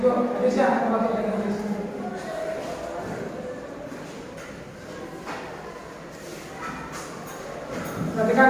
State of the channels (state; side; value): identical; both; correlation 1.00